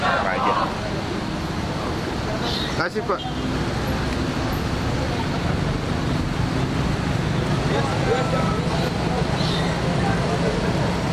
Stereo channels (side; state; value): both; identical; correlation 1.00